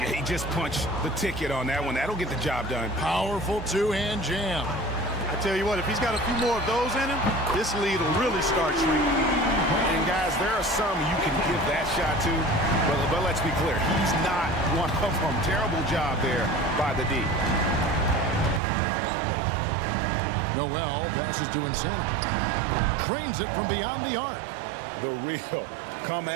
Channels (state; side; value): drops out; left; at 18.6 s